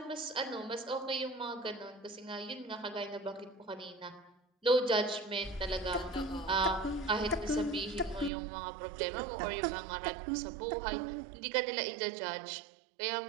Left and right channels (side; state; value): left; drops out; at 8.3 s